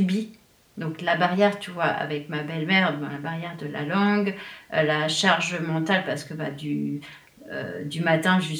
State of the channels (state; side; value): identical; both; correlation 1.00